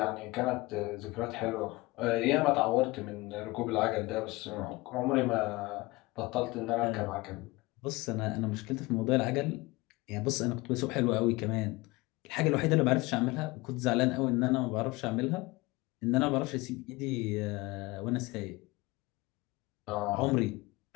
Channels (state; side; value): quieter; right; 22.5 dB